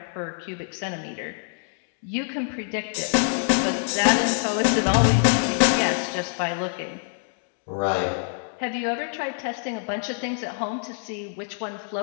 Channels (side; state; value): right; silent; digital silence